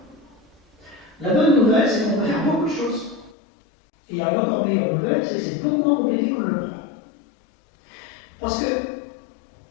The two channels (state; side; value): drops out; right; at 3.4 s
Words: La bonne nouvelle, c'est qu'on peut faire beaucoup de choses. Et il y a une encore meilleure nouvelle, c'est que c'est beaucoup moins compliqué qu'on le croit. Parce que